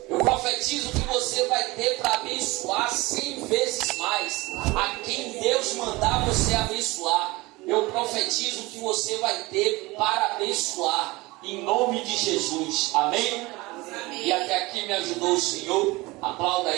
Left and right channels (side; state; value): left; quieter; 22.0 dB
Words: Eu profetizo que você vai ter para abençoar 100 vezes mais a quem Deus mandar você abençoar. Eu profetizo que você vai ter para abençoar, em nome de Jesus. Amém? E até aqui me ajudou o Senhor. Aplauda